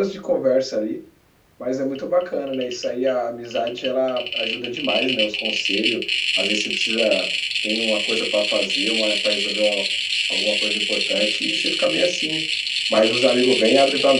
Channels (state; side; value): identical; both; correlation 1.00